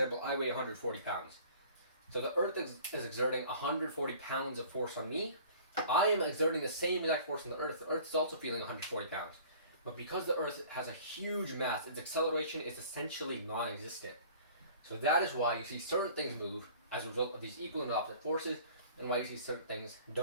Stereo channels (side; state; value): both; inverted; correlation -0.48